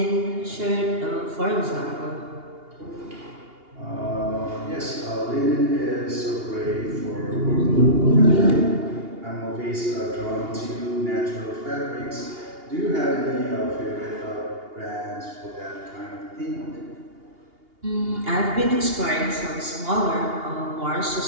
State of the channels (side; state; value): left; late; 2.8 ms